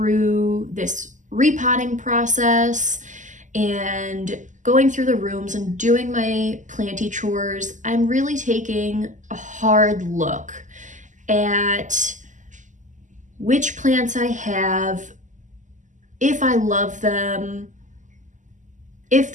this repotting process and going through the rooms and doing my planty chores, I'm really taking a hard look at which plants I have, if I love them, if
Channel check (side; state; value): left; late; 0.37 ms